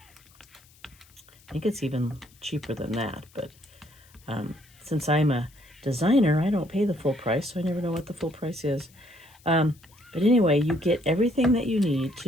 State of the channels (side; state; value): left; noise; hiss, 28 dB below the sound